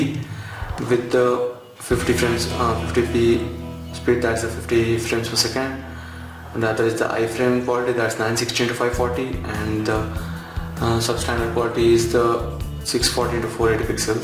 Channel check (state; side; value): identical; both; correlation 1.00